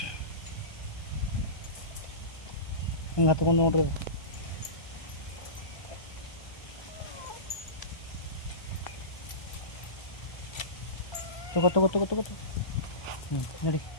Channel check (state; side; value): late; right; 1.2 ms